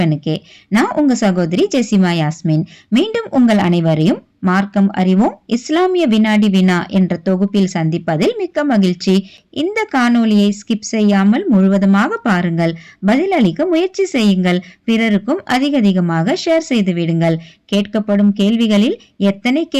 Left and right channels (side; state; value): both; identical; correlation 1.00